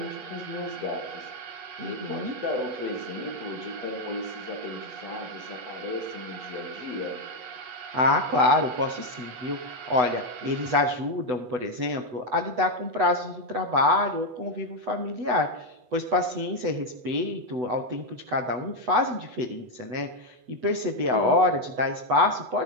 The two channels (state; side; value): late; left; 8.0 ms